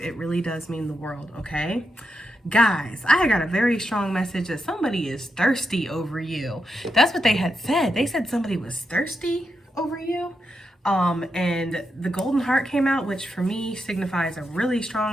It really does mean the world, okay? Guys, I got a very strong message that somebody is thirsty over you. That's what they had said. They said somebody was thirsty over you. And the golden heart came out, which for me signifies a really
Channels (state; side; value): normal; both; correlation 0.85